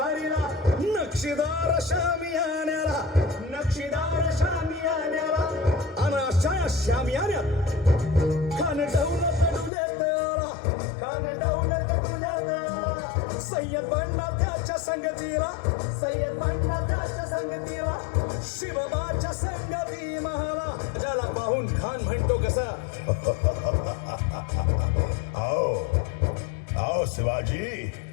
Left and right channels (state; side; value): drops out; right; at 9.7 s